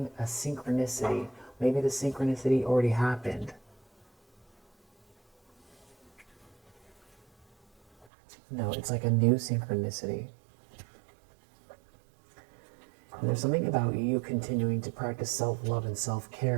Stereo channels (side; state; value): left; drops out; at 8.1 s